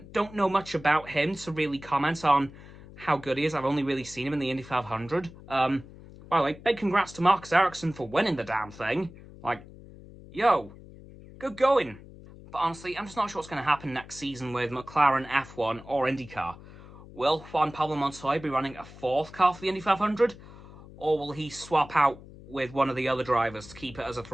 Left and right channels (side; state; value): left; noise; hum, 18 dB below the sound